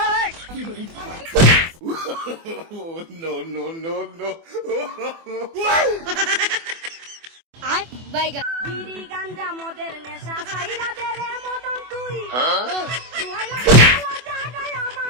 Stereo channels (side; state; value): left; late; 24 ms